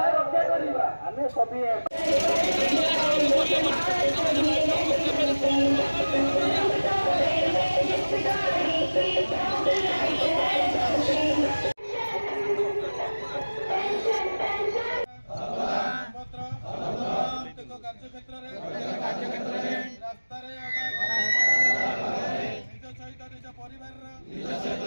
ଆମେ ସଭିଏ କାର୍ଯ୍ୟକ୍ଷେତ୍ର ରାସ୍ତାରେ ନିଜ ସହିତ ନିଜ ପରିବାରର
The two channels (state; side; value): inverted; both; correlation -1.00